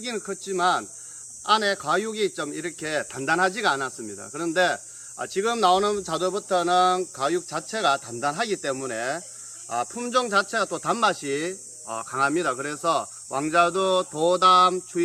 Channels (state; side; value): identical; both; correlation 1.00